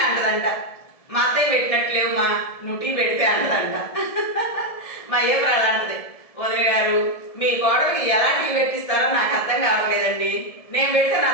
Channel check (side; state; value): right; late; 1.7 ms